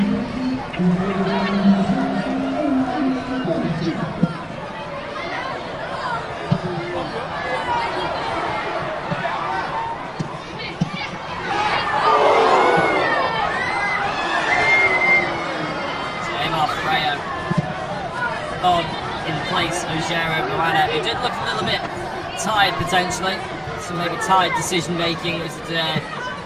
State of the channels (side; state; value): both; identical; correlation 1.00